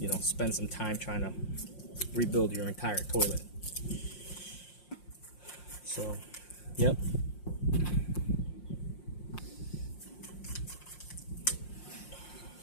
spend some time trying to rebuild your entire toilet. So yep.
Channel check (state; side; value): late; right; 5.6 ms